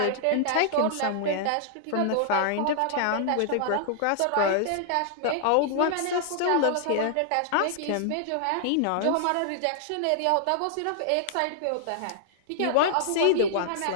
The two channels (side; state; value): both; different; correlation -0.01